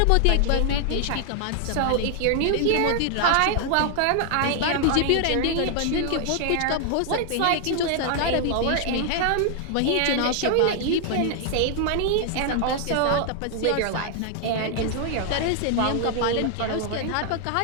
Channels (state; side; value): different; both; correlation 0.00